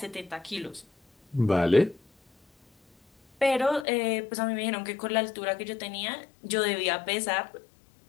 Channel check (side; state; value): right; drops out; at 3.9 s